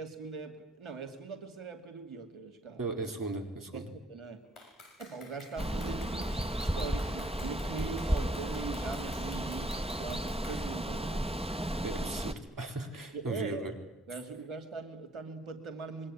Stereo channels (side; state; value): both; normal; correlation 0.65